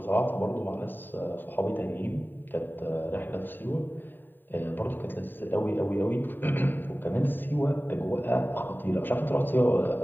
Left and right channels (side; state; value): right; late; 0.092 ms